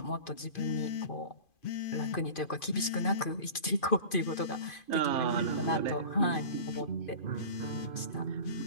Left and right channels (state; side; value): late; right; 2.5 ms